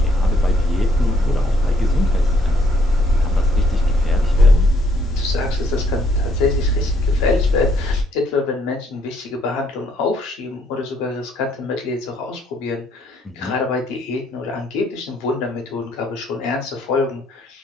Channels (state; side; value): normal; both; correlation 0.68